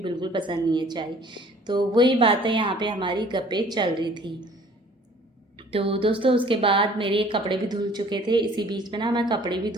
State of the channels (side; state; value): both; normal; correlation 0.53